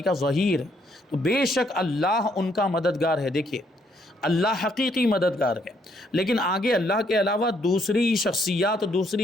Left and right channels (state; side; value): normal; both; correlation 0.70